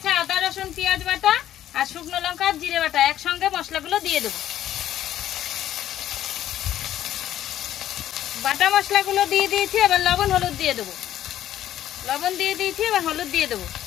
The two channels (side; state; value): right; quieter; 12.1 dB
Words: আদা রসুন পেঁয়াজ বাটা আর শুকনো লঙ্কা আর জিরে বাটা, একসঙ্গে মশলাগুলো দিয়ে দেবো। বাটা মশলাগুলো দিয়ে দিয়েছি, এবার লবণ হলুদ দিয়ে দেবো। লবণ দিয়ে দিয়েছি, এবার হলুদ দিয়ে দেবো।